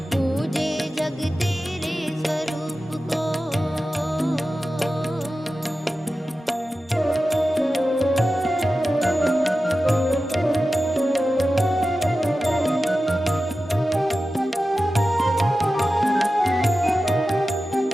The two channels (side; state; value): both; normal; correlation 0.93